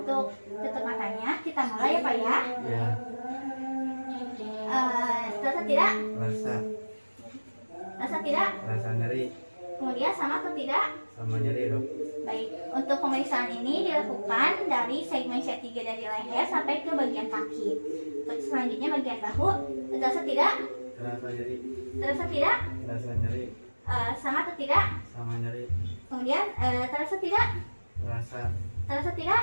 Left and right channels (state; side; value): inverted; both; correlation -1.00